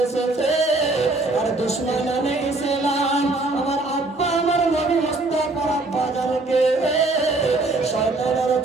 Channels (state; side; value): quieter; left; 3.1 dB